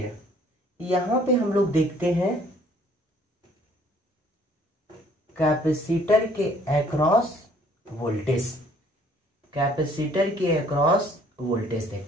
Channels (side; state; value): both; normal; correlation 0.60